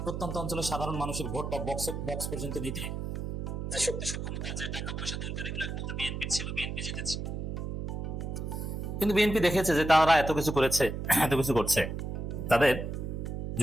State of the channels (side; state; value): right; noise; hum, 4 dB below the sound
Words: প্রত্যন্ত অঞ্চলের সাধারণ মানুষের ভোটটা বক্স পর্যন্ত নিতে যে শক্তি সক্ষমতা, যে টাকা পয়সা দরকার, এগুলো একমাত্র বিএনপি ছিল, বিএনপি জিতেছে। কিন্তু বিএনপি দেখেছে যে তারা এত কিছু করেছে, এত কিছু করছে, তাদের